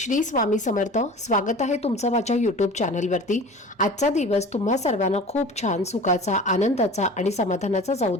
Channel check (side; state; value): both; normal; correlation 0.39